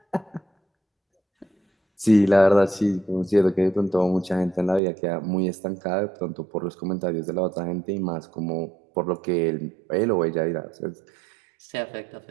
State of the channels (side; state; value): left; drops out; at 4.8 s